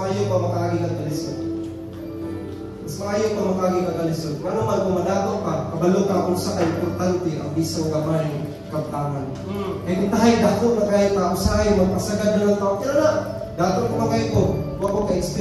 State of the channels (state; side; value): identical; both; correlation 1.00